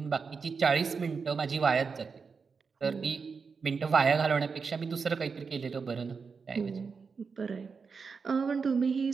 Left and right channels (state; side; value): quieter; left; 5.3 dB